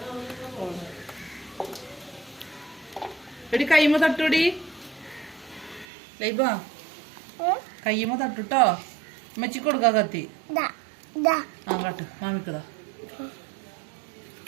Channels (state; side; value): drops out; left; at 5.9 s